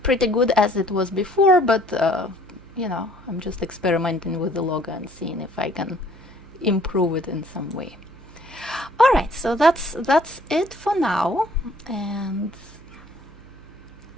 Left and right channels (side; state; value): right; noise; hum, 24 dB below the sound